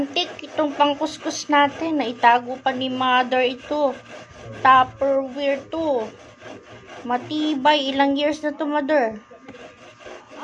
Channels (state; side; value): identical; both; correlation 1.00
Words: itong pangkuskus natin. Naitago pa ni mother ito. Tupperware to. Matibay. Ilang years na to, mother?